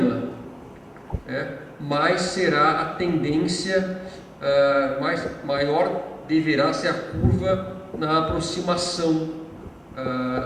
mais será a tendência, maior deverá ser a curva na aproximação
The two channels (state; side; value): identical; both; correlation 1.00